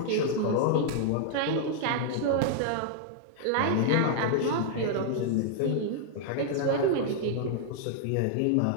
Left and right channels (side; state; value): both; different; correlation -0.01